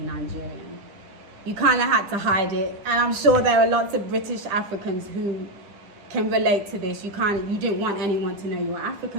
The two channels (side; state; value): left; late; 10 ms